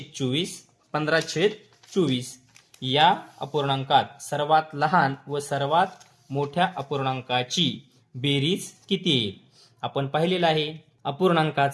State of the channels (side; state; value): both; identical; correlation 1.00